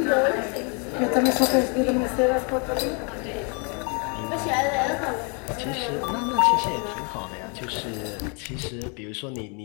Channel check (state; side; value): quieter; right; 35.5 dB